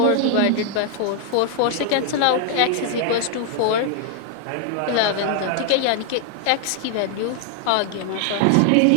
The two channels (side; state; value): both; different; correlation 0.00